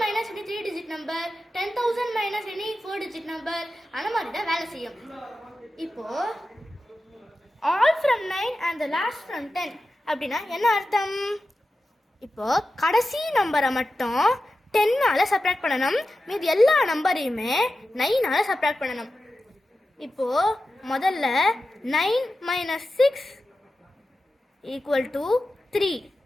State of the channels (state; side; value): normal; both; correlation 0.92